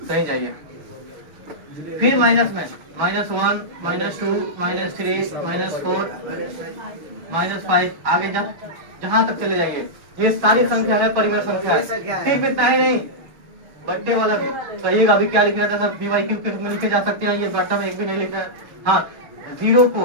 कहीं जाइए। फिर माइनस में -1, -2, -3, -4, -5 आगे जहां तक चले जाइए। ये सारी संख्या है परिमेय संख्या। सिर्फ इतना ही नहीं, बट्टे वाला भी कहिएगा। अभी क्या लिख रहा था सर? p बाई q के रूप में लिखे जा सकते हैं। ये बट्टा में एक भी नहीं लिख रहा है। हाँ, 0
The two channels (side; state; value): left; late; 6.1 ms